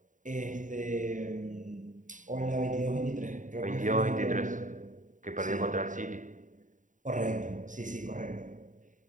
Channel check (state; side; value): late; left; 0.37 ms